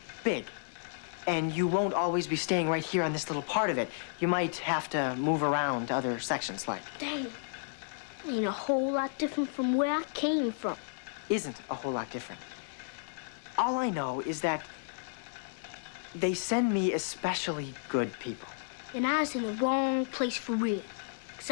big, and you won't always be staying right here on this little part of it. You might have to move around to other sections, like. Dang. Ain't a whole lot different from where I came from. Isn't a whole lot different. All I know is that they send me especially good people. And I was in the wrong place for real. 'Cause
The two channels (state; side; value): silent; right; 56 dB below the other